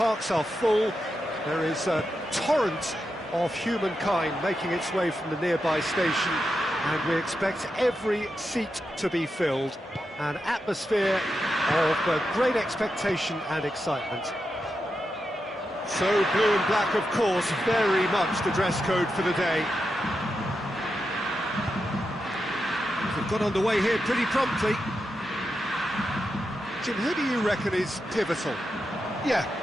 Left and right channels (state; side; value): normal; both; correlation 0.87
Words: are full. There is a torrent of humankind making its way from the nearby station, and we expect every seat to be filled. An atmosphere of great expectation and excitement. So blue and black, of course, very much the dress code for the day. We've got underway here pretty promptly. Jim, who do you reckon is pivotal? Yeah,